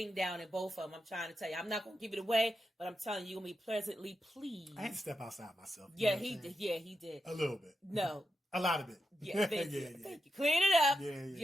down in both of them. I'm trying to tell you. I'm not going to give it away, but I'm telling you, you're going to be pleasantly pleased. I had to step outside myself. Yeah, he did. Yeah, he did. A little bit. No. A lot of it. Yeah, thank you. Thank you. Clean it up.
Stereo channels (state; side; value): normal; both; correlation 0.87